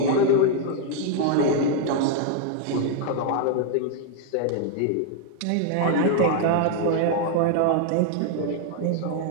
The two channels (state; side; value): different; both; correlation 0.00